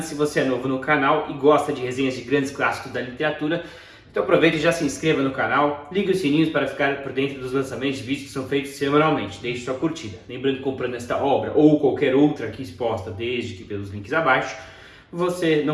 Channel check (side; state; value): both; identical; correlation 1.00